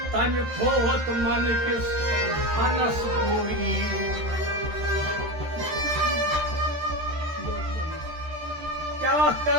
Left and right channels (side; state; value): left; late; 13 ms